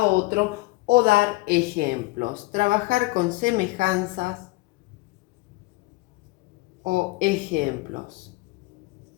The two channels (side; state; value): right; quieter; 21.9 dB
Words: otro o dar ejemplos. Trabajar con semejanzas o ejemplos